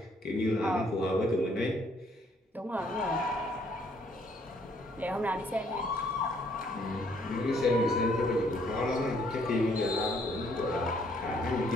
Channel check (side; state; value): both; normal; correlation 0.66